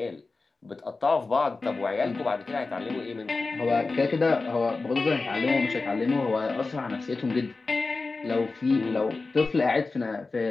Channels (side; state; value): right; quieter; 3.8 dB